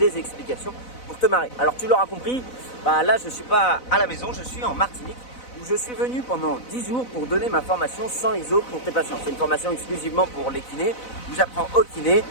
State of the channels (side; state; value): right; late; 4.0 ms